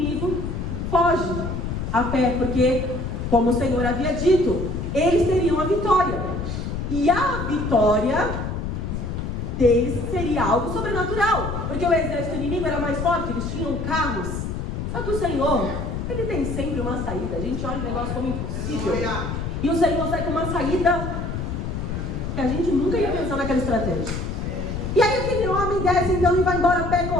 foge a pé, porque, como o Senhor havia dito, eles teriam a vitória. E a vitória deles seria algo sobrenatural, porque o exército inimigo era mais forte, eles tinham carros. Só que o Senhor, ele tem sempre uma saída. A gente olha o negócio como impossível, e o Senhor sai com uma saída que a gente nunca ia pensar naquela estratégia. E aí aquele homem desce então e vai embora a pé,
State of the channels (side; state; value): left; noise; rumble, 4 dB below the sound